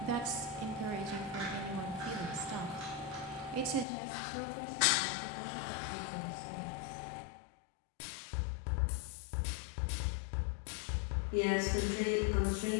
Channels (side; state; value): right; drops out; at 3.9 s